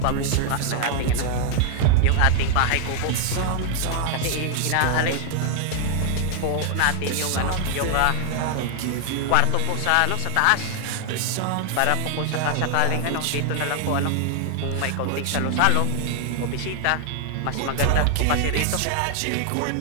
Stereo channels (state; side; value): different; both; correlation 0.00